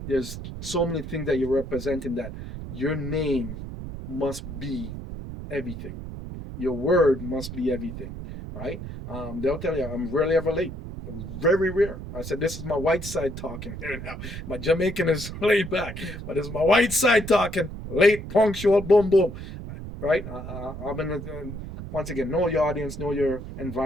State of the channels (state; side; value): noise; right; rumble, 9 dB below the sound